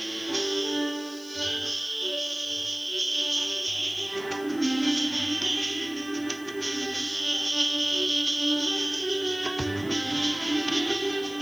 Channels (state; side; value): noise; left; hiss, 21 dB below the sound